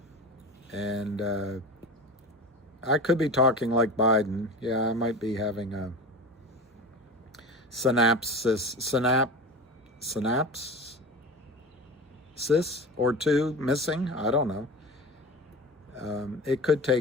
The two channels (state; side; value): normal; both; correlation 0.31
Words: And I could be talking like Biden. Yeah, I might be having a synapses or two missing. I don't know. It could